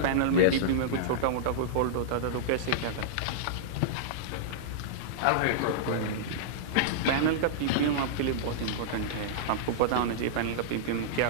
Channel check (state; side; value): different; both; correlation -0.02